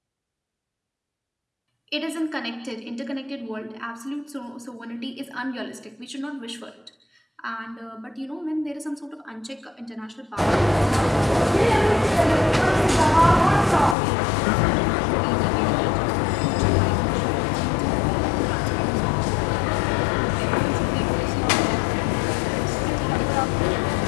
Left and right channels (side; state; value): right; drops out; at 14.0 s